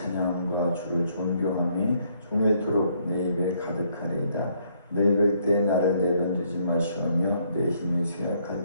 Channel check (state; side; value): inverted; both; correlation -0.69